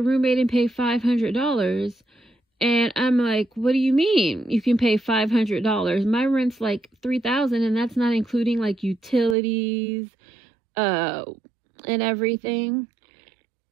roommate and pay $500. And I'm like, what do you mean you can pay $500? My rent's like $3,000, and that's not including like utilities and everything.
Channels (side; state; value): left; drops out; at 9.3 s